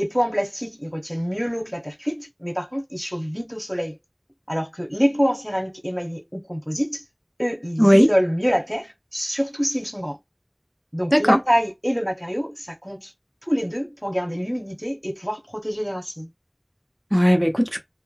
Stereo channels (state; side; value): identical; both; correlation 1.00